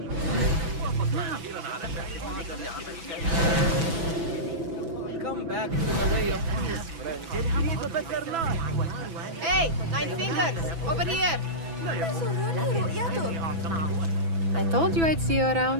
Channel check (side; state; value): left; late; 6.0 ms